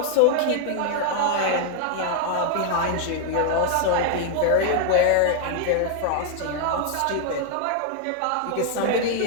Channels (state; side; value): different; both; correlation 0.00